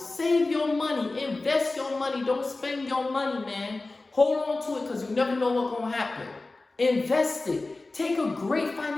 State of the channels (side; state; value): right; quieter; 3.2 dB